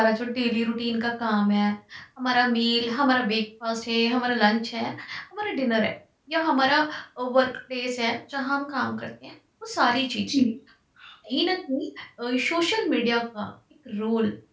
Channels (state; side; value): identical; both; correlation 1.00